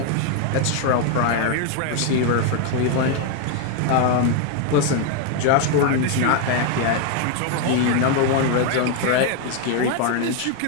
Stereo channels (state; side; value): different; both; correlation 0.00